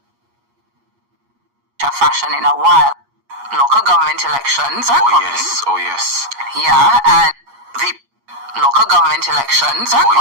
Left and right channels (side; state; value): left; late; 8.4 ms